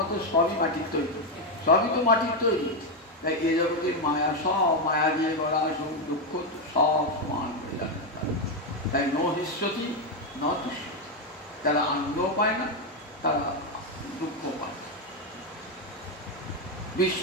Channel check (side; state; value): both; normal; correlation 0.06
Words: তো সবই মাটির তৈরি, সবই তো মাটির তৈরি। তাই এ জগতের মায়া, সব মায়া দিয়ে গড়া, সুখ দুঃখ সব সমান হয়ে যাবে। তাই ন হিষ্যতি ন তুষ্যতি। যারা আনন্দ পায় না তারা দুঃখ পায়।